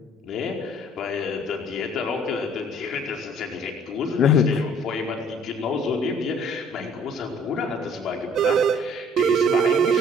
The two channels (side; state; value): both; normal; correlation 0.57